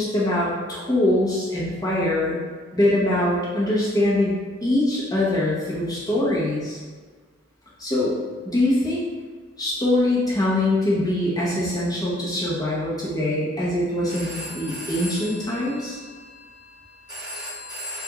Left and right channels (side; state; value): both; normal; correlation 0.65